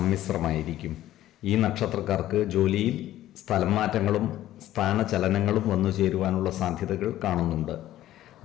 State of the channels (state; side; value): quieter; right; 13.8 dB